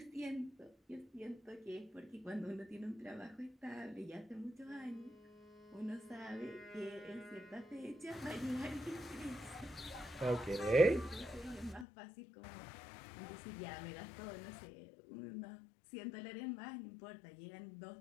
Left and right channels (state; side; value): drops out; right; at 11.9 s